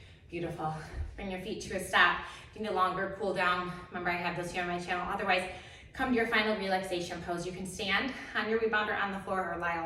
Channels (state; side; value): identical; both; correlation 1.00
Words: Beautiful. Bring your feet to a stop. If you need a longer cool down, remember I have those here on my channel. Otherwise, come to your final relaxation pose. You can stand on your rebounder on the floor or lie